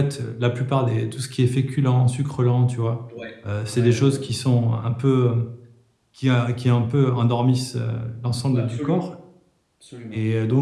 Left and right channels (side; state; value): both; identical; correlation 1.00